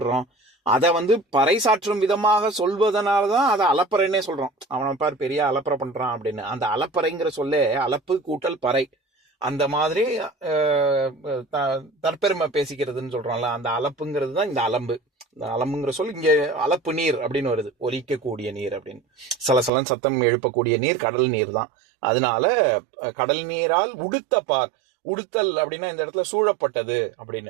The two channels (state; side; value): drops out; left; at 19.7 s